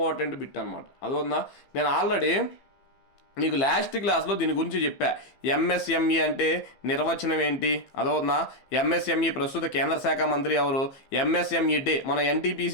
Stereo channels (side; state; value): right; late; 15 ms